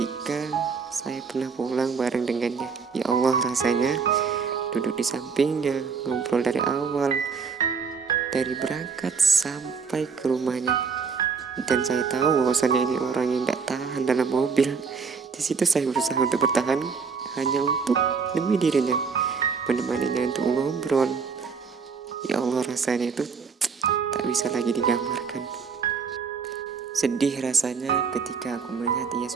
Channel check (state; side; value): quieter; left; 5.6 dB